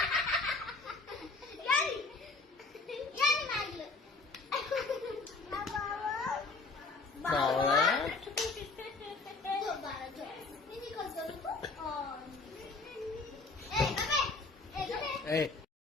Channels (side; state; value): right; quieter; 3.8 dB